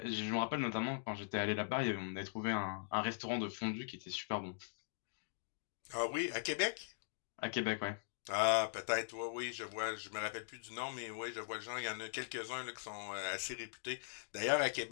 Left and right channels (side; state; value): right; silent; digital silence